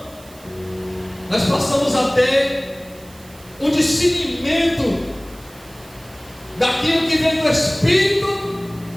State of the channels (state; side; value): noise; right; hiss, 24 dB below the sound